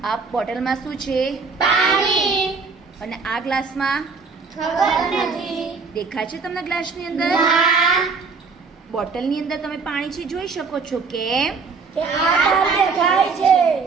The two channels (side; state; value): left; quieter; 4.8 dB